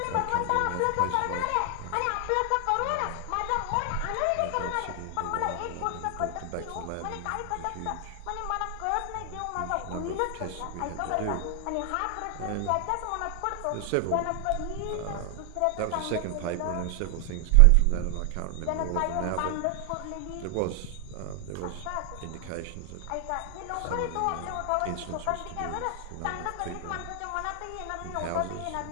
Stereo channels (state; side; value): different; both; correlation 0.00